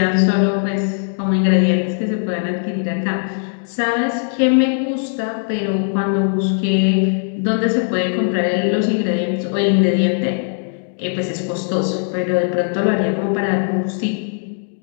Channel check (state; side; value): silent; right; digital silence